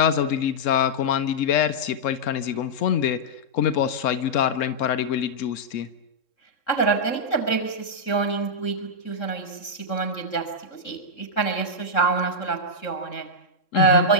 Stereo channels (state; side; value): late; right; 3.7 ms